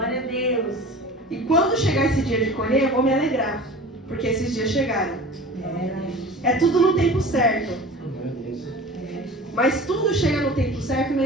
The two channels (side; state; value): both; normal; correlation 0.38